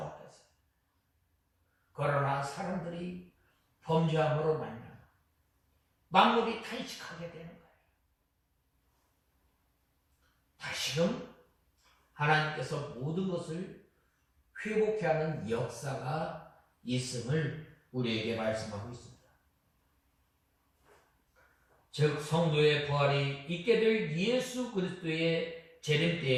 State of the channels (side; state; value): both; identical; correlation 1.00